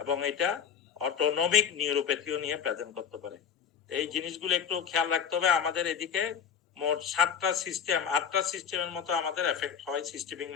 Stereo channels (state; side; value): quieter; right; 7.5 dB